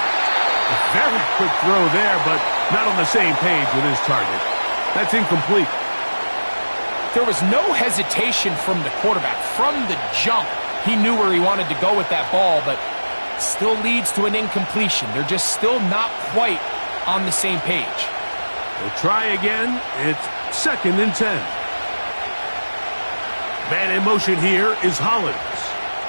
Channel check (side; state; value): both; inverted; correlation -1.00